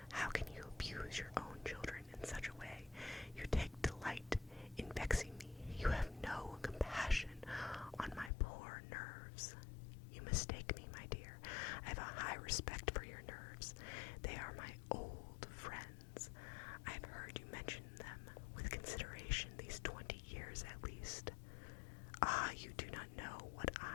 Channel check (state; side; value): drops out; right; at 8.3 s